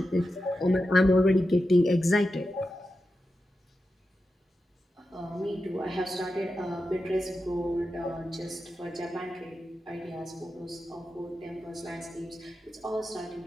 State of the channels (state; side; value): normal; both; correlation 0.90